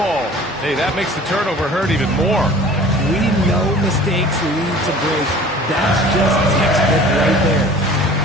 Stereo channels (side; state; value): both; normal; correlation 0.45